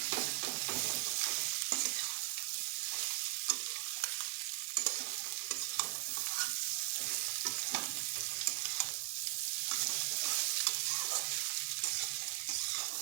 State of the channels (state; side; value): silent; left; 52 dB below the other